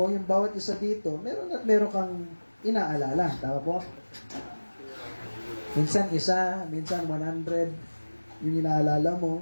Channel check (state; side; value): inverted; both; correlation -1.00